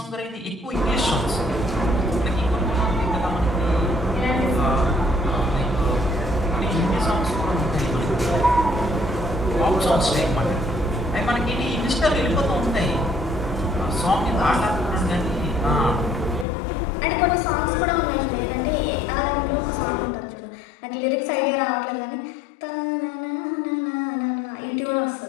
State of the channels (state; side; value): drops out; right; at 16.4 s